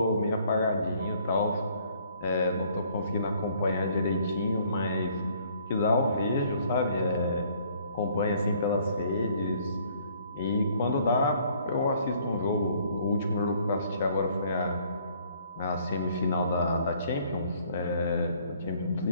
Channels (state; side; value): inverted; both; correlation -0.61